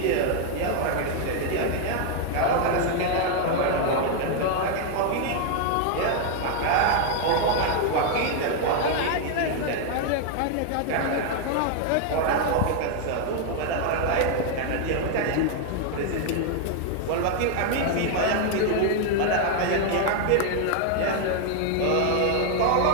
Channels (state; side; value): different; both; correlation 0.00